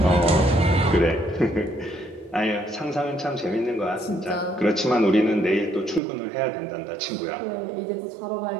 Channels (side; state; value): left; drops out; at 6.0 s